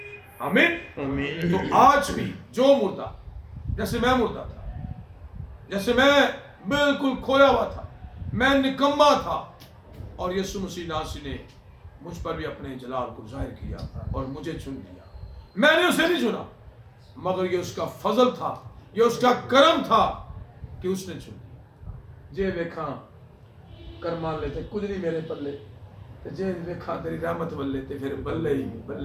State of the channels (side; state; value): both; identical; correlation 1.00